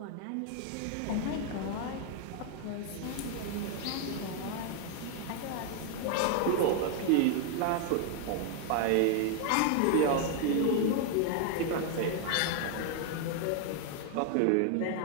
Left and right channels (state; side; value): different; both; correlation 0.00